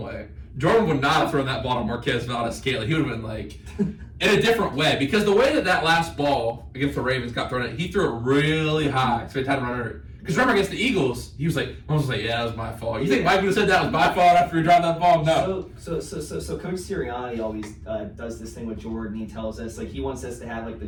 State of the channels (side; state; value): both; identical; correlation 1.00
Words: way. Jordan would not have thrown that ball to Marquez Valdez-Scantling. He would have been like in a different way because the way that last ball against the Ravens got thrown at, he threw it really high, so he had to run under it. Because remember against the Eagles, Mahomes was like, yeah, that was my fault. You think Mike would have said that was my fault after he dropped that ball? No. So Coach Sirianni always does this thing with Jordan. He tells us like he wants us to have like